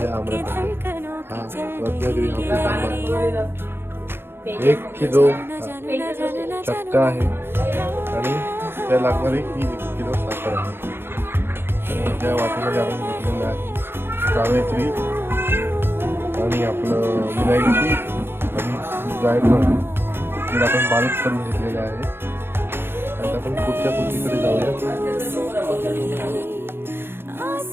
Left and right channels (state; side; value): late; left; 0.11 ms